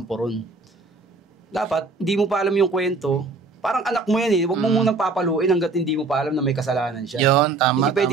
ron. Dapat, hindi mo pa alam yung kwento. Parang anak mo yan Huwag mo munang papaluin hanggat hindi mo pa alam na may kasalanan siya. Yun, tama. Hindi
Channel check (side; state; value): left; quieter; 3.9 dB